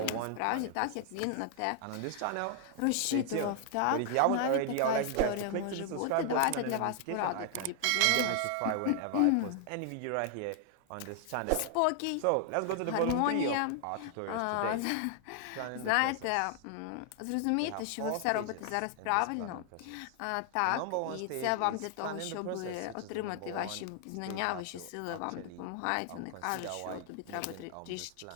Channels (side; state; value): both; different; correlation 0.00